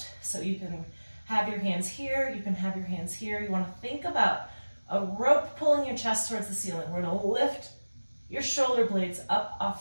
So you can have your hands here, you can have your hands here. You wanna think about a rope pulling your chest towards the ceiling. We're gonna lift your shoulder blades up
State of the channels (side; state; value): both; inverted; correlation -1.00